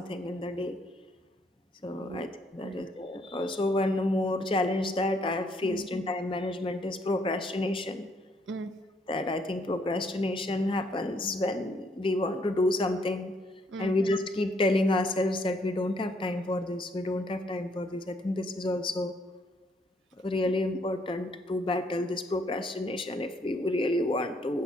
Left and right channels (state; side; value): normal; both; correlation 0.69